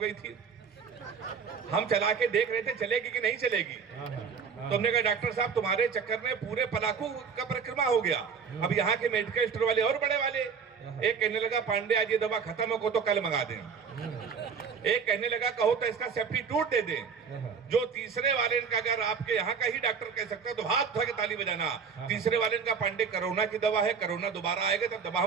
थी, हम चला के देख रहे थे चलेगी कि नहीं चलेगी। तो हमने कहा डॉक्टर साहब तुम्हारे चक्कर में पूरे पलाकू का परिक्रमा हो गया। अब यहाँ के मेडिकल स्टोर वाले और बड़े वाले, एक कहने लगा पांडे आज ये दवा खत्म हो तो कल मंगा दें। एक कहने लगा कहो तो इसका सब्स्टिट्यूट दे दें। जो तीसरे वाले का, अगर आपके यहाँ का ही डॉक्टर कह सकता है तो हाथ उठा के ताली बजाना। तीसरे वाले का पांडे कोरोना की दवा है, कोरोना दोबारा आएगा तब दवा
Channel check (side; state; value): left; quieter; 6.1 dB